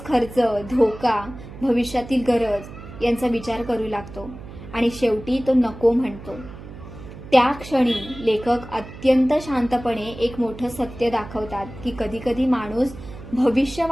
खर्च, धोका, भविष्यातील गरज यांचा विचार करू लागतो आणि शेवटी तो नको म्हणतो. त्या क्षणी लेखक अत्यंत शांतपणे एक मोठं सत्य दाखवतात की कधीकधी माणूस भविष्य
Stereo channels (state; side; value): noise; right; hum, 14 dB below the sound